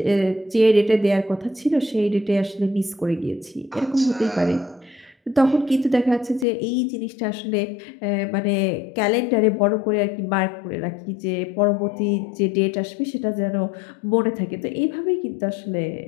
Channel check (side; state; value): right; drops out; at 6.5 s